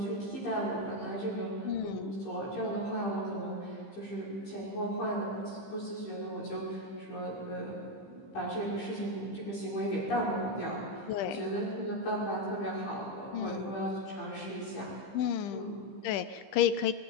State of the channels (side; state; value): right; late; 15 ms